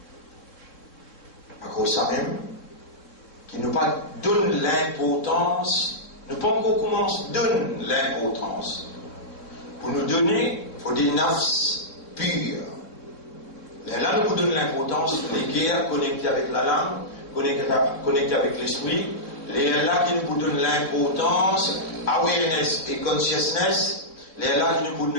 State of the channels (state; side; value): late; right; 3.6 ms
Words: À cause de ça même, qui nous pas donne l'importance, nous pas encore commence donne l'importance. Pour nous donner, il faut des nafs purs. Là, nous vous donnons l'importance, les guerres connectées avec la langue, connectées avec l'esprit. Les là qui nous donnent l'importance, awareness et consciousness. Les là qui nous